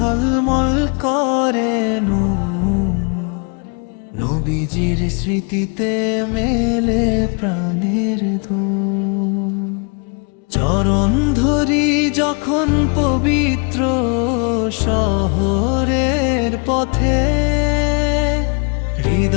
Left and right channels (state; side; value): quieter; right; 35.8 dB